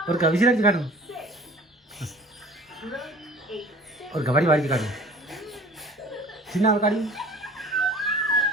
ഒരു വിശിൽ അടിച്ച് കാട്ടുന്നു ஒரு கபடி வாடிச்சு காட்டு சின்ன ஒரு காடி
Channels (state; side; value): normal; both; correlation 0.46